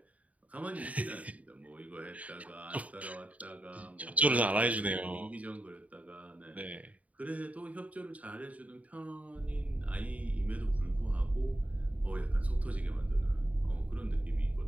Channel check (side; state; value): left; late; 0.069 ms